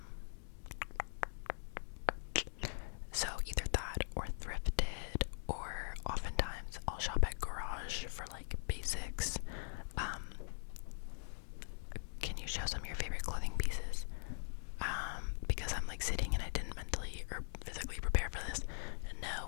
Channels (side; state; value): right; silent; digital silence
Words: So either that or thrifted, or oftentimes I'll shop at Garage for like basics. Can you show some of your favorite clothing pieces? Because I'm like sitting and I didn't mentally or physically prepare for this.